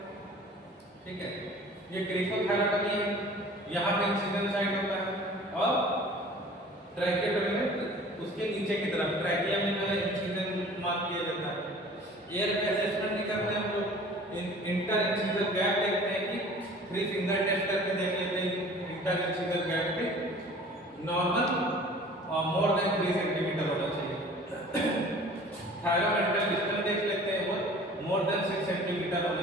ठीक है। ये क्रीकोथायरॉयडोटमी है, यहाँ पे इंसिजन साइट होता है और ट्रैकियोटमी में उसके नीचे की तरफ ट्रैकिया में जो है इंसिजन मार्क किया जाता है। एयर असेसमेंट भी करते हैं हम लोग, इंटर इंसिजर गैप देखते हैं कि 3 फिंगर टेस्ट करके देख लेते हैं इंटर इंसिजर गैप पे नॉर्मल और मोर देन 3 सेंटीमीटर होना चाहिए। थायरोमेंटल डिस्टेंस देख लेते हैं, वो मोर देन 6 सेंटीमीटर होना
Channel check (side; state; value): both; normal; correlation 0.46